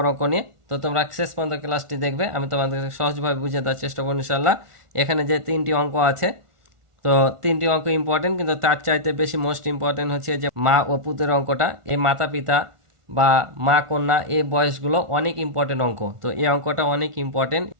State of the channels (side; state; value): left; late; 1.4 ms